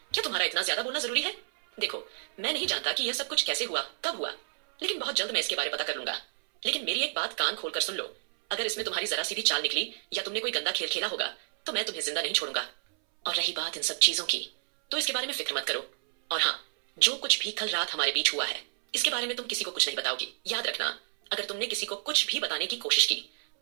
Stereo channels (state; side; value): silent; left; 58 dB below the other